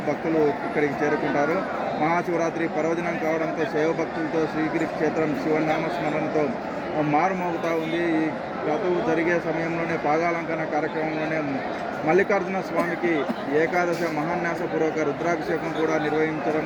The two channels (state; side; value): identical; both; correlation 1.00